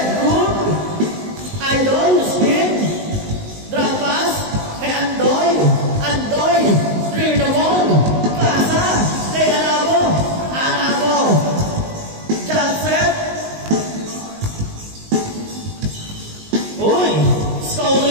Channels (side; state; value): left; late; 19 ms